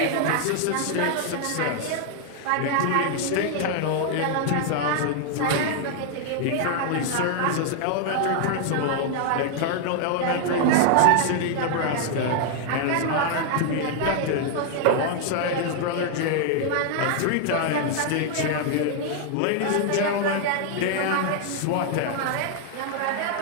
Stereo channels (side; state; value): both; different; correlation 0.00